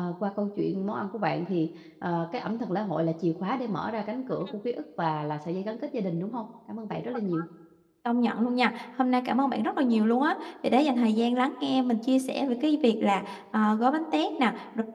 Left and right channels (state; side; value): identical; both; correlation 1.00